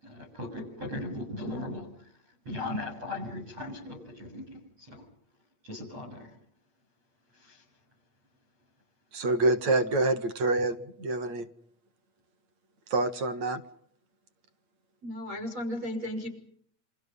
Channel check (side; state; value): left; late; 8.6 ms